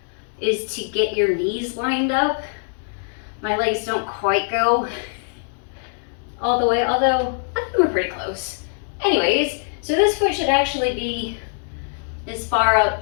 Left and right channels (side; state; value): right; silent; digital silence